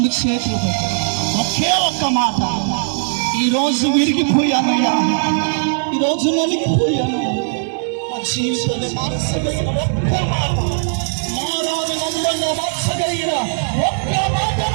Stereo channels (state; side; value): silent; left; digital silence